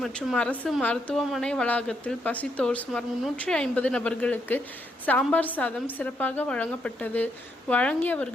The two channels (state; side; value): normal; both; correlation 0.77